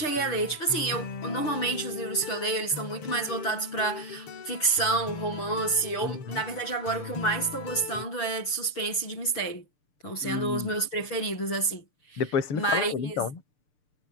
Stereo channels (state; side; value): late; right; 6.7 ms